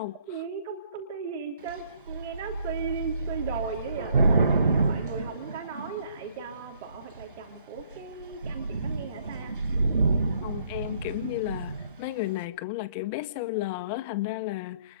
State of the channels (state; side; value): inverted; both; correlation -0.63